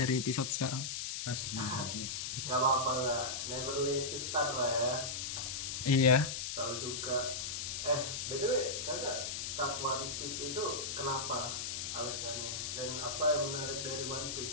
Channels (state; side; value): noise; left; hiss, 3 dB below the sound